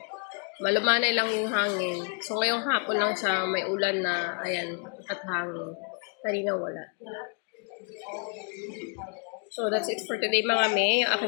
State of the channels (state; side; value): quieter; right; 36.9 dB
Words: Malumanay lang yung hangin. So, ngayong hapon lang siya may ulan na, ayan, at hangin. Kanina wala. So, that's it for today mga me. Yung